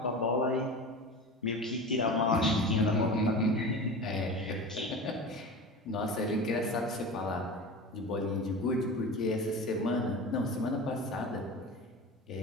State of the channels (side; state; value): both; normal; correlation 0.31